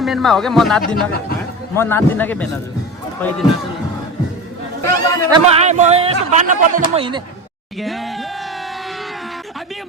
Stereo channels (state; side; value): normal; both; correlation 0.26